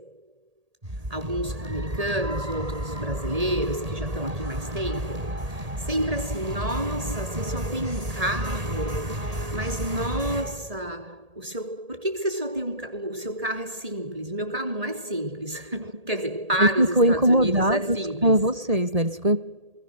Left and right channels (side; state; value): left; late; 1.8 ms